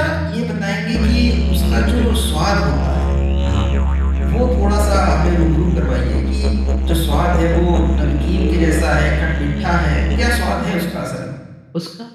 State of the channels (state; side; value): identical; both; correlation 1.00